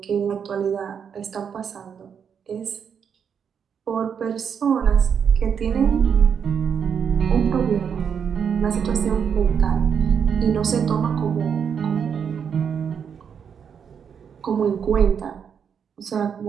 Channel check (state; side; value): quieter; left; 7.3 dB